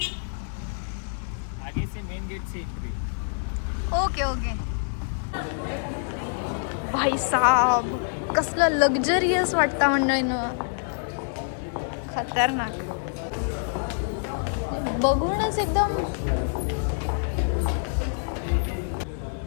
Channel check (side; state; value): right; silent; 61 dB below the other